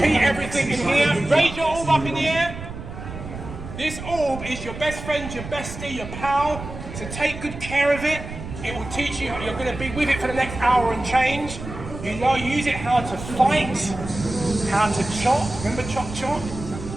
everything in here. Raise your orb up in the air. This orb is your best friend, your bestie, your pal. So take good care of it. It will teach you, you're going to be with it for the next hour and change. You know, use it how to fight, how to chop. Remember chop chop?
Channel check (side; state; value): right; noise; rumble, 10 dB below the sound